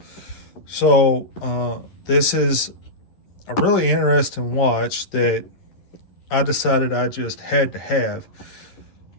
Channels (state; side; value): late; right; 11 ms